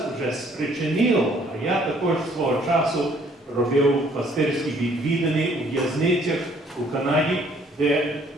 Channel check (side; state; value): both; normal; correlation 0.62